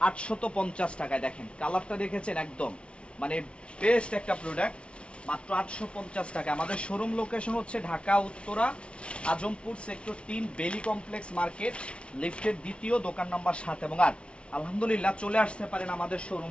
850 টাকায়। দেখেন কালারটা দেখেছেন, একদম মানে বেস্ট একটা প্রোডাক্ট, মাত্র 850 টাকা। আমাদের শোরুম লোকেশন হচ্ছে ঢাকা উত্তরা আজমপুর সেক্টর 3 বেলি কমপ্লেক্স মার্কেট, লিফটের 2য় দোকান নাম্বার 7 এবং 8। আলহামদুলিল্লাহ চলে আসতে পারেন আমাদের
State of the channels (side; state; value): right; late; 0.059 ms